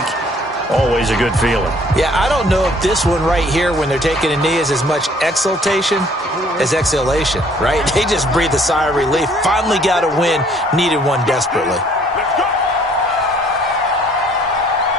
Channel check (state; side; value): normal; both; correlation 0.59